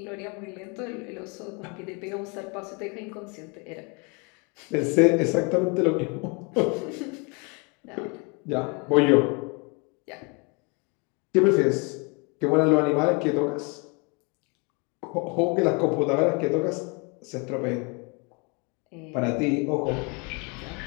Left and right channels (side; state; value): right; quieter; 31.6 dB